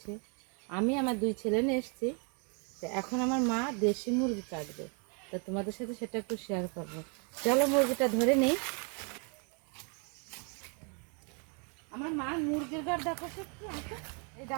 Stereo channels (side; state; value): left; quieter; 37.0 dB